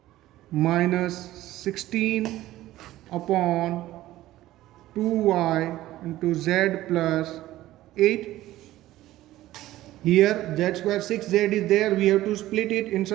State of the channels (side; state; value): left; quieter; 15.4 dB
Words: minus 16 upon 2y into z plus 8. Here z square 6z is there, we have to split it in